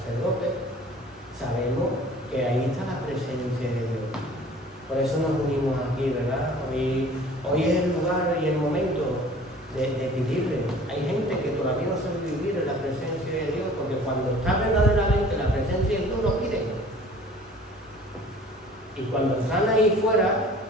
Sabemos que ahí está la presencia de Dios. Por eso nos unimos aquí, ¿verdad? Hoy es el lugar y el momento de vivirle. Hay gente que todavía no sabe vivir en la presencia de Dios, porque cuando está verdaderamente la presencia de Dios, no piden. Y cuando están ahí fuera,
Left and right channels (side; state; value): both; normal; correlation 0.48